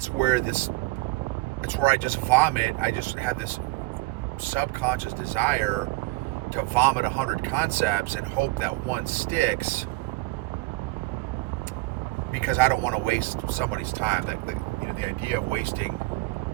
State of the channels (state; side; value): quieter; left; 21.9 dB